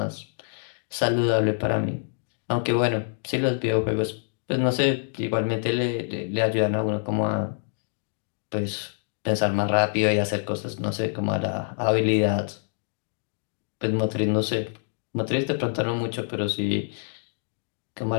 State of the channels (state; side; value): silent; right; digital silence